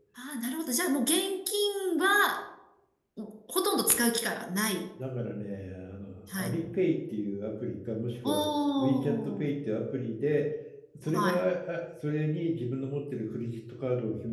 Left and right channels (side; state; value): both; identical; correlation 1.00